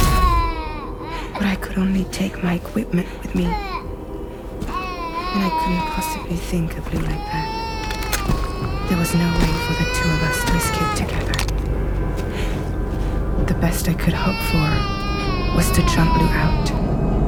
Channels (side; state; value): both; identical; correlation 1.00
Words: But I could only take my equipment with me. And I couldn't possibly think of Lou like that. There was no way for the two of us to escape together. The best I could hope for was to jump Lou out.